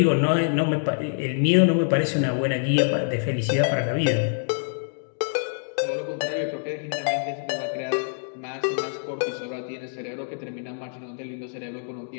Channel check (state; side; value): silent; right; digital silence